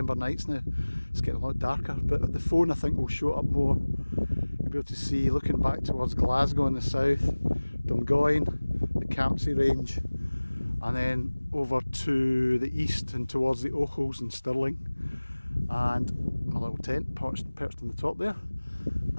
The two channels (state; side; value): inverted; both; correlation -1.00